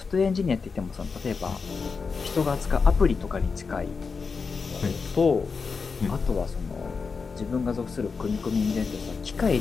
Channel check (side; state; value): right; quieter; 5.0 dB